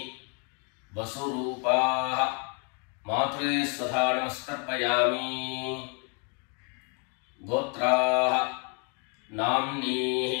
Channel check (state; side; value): quieter; right; 36.3 dB